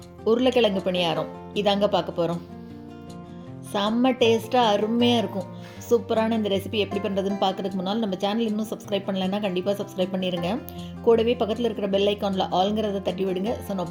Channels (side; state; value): both; identical; correlation 1.00